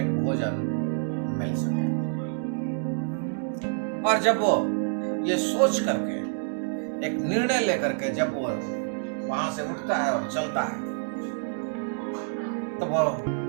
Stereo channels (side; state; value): left; silent; digital silence